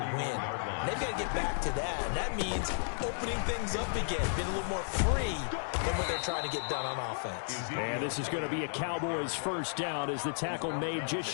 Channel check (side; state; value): right; silent; digital silence